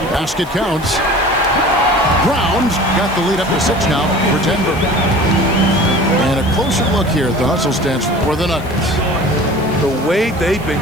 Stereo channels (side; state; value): right; noise; hiss, 22 dB below the sound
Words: Basket counts. Brown's got the lead up to 6 now for Denver. And a closer look here at the hustle stance for the Nuggets. The way they've